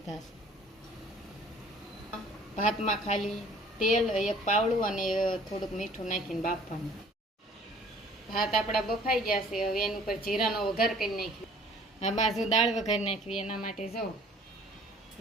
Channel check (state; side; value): normal; both; correlation 0.53